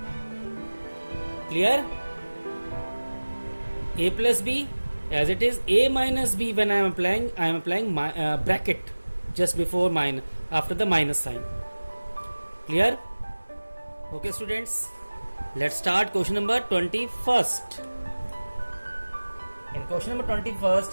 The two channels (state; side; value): inverted; both; correlation -1.00